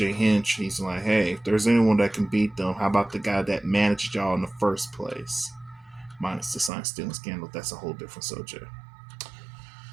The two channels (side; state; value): left; drops out; at 6.7 s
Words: Hinch, he's like, hey, if there's anyone that can beat them, how about the guy that managed y'all in the first place? Minus the sign stealing scandal. That's a whole different subject.